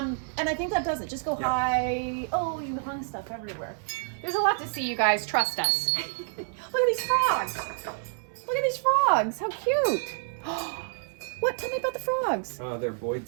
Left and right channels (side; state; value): left; silent; digital silence